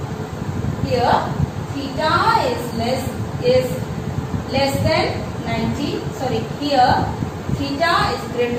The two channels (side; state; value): both; identical; correlation 1.00